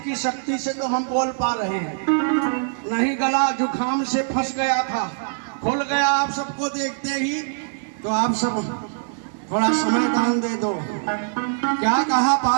शक्ति से तो हम बोल पा रहे हैं, नहीं गला जुखाम से फंस गया था, खुल गया आप सबको देखते ही। तो आप सब थोड़ा समय दान दे दो। क्या कहा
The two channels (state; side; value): silent; left; digital silence